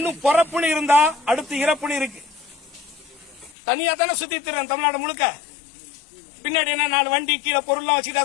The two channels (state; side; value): drops out; right; at 3.6 s